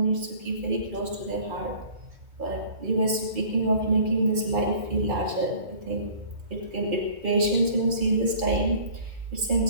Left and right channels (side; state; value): left; late; 2.4 ms